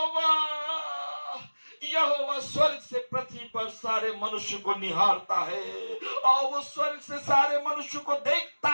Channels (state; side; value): inverted; both; correlation -1.00